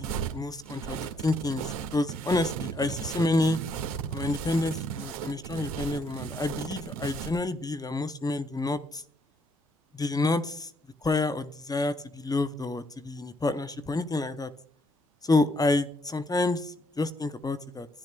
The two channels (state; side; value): normal; both; correlation 0.71